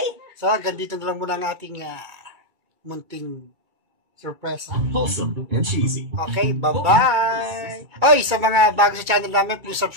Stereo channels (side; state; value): left; late; 2.2 ms